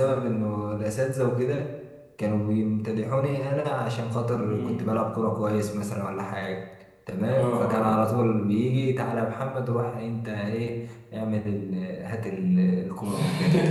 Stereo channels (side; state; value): both; identical; correlation 1.00